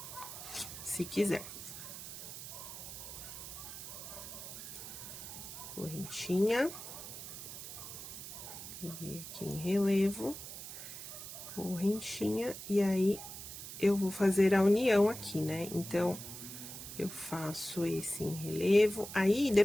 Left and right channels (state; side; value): noise; right; hiss, 10 dB below the sound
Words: se quiser. Correntinha. Peguei aqui em relevo, correntinha, e aí, eu vou fazer a união aqui, né? Então, eu faço esse em relevo, aí,